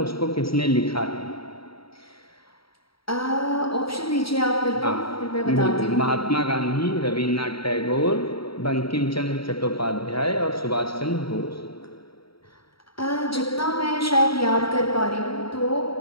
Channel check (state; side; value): late; right; 0.75 ms